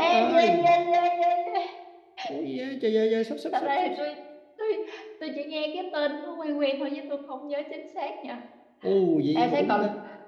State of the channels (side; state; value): both; identical; correlation 1.00